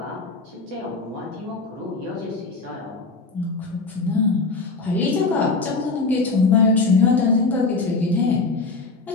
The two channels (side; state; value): right; quieter; 3.8 dB